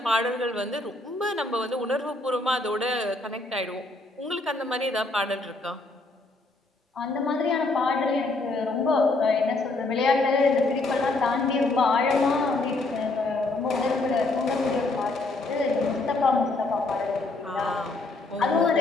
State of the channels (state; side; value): quieter; right; 3.1 dB